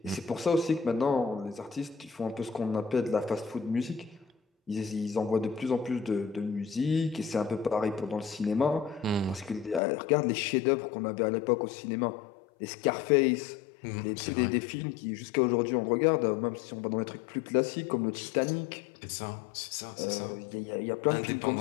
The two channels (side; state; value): right; drops out; at 9.8 s